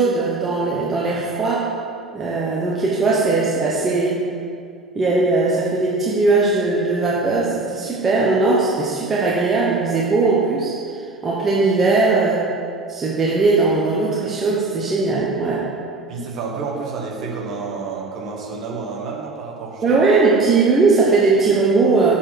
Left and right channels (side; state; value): left; quieter; 3.2 dB